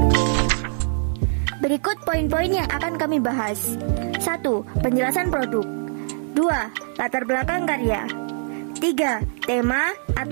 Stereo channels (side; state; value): left; silent; 63 dB below the other